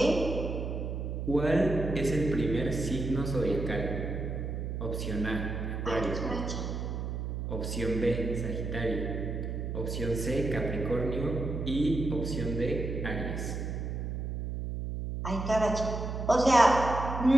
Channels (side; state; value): right; noise; hum, 4 dB below the sound